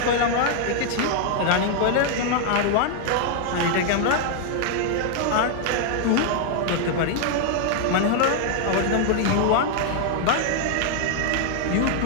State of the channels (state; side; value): different; both; correlation 0.00